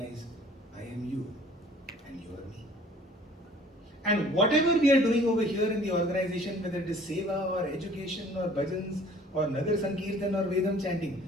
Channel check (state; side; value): normal; both; correlation 0.52